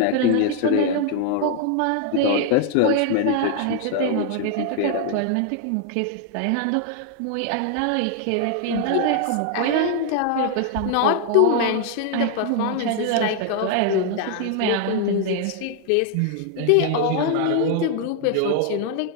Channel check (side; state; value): both; different; correlation 0.00